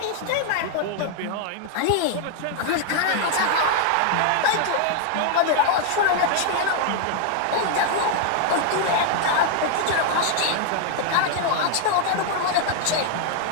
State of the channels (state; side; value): different; both; correlation 0.00